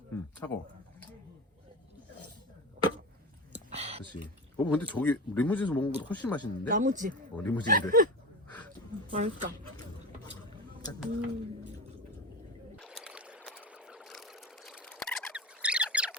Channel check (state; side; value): normal; both; correlation 0.25